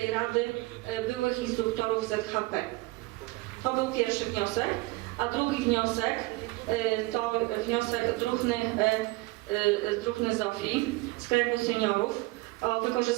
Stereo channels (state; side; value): quieter; left; 22.0 dB